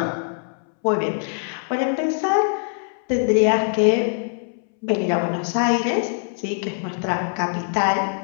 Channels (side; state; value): right; silent; 64 dB below the other